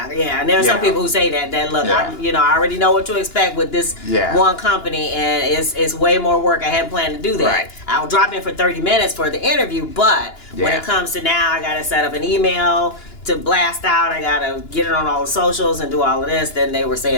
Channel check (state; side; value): late; right; 2.9 ms